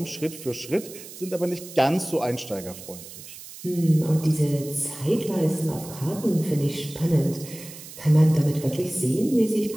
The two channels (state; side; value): noise; right; hiss, 15 dB below the sound